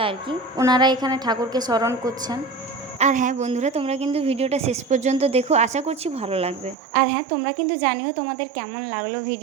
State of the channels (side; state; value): left; drops out; at 6.8 s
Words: আর কি, ওনারা এখানে ঠাকুরকে স্মরণ করছেন। আর হ্যাঁ বন্ধুরা, তোমরা কিন্তু ভিডিওটা শেষ পর্যন্ত দেখো, আশা করছি ভালো লাগবে। আর হ্যাঁ, তোমরা কিন্তু জানিও তোমাদের কেমন লাগলো